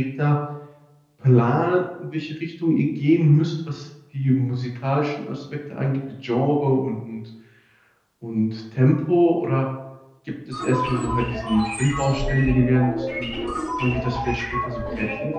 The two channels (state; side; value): identical; both; correlation 1.00